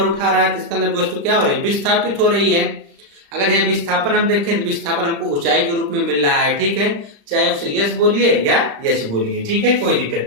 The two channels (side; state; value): left; late; 35 ms